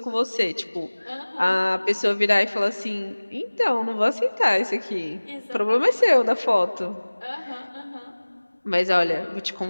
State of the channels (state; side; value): inverted; both; correlation -1.00